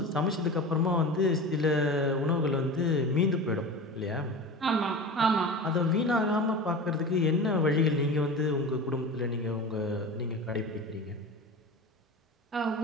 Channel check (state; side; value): normal; both; correlation 0.31